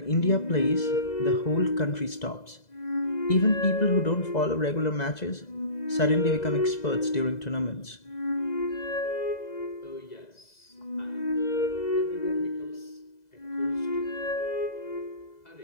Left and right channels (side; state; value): right; late; 2.0 ms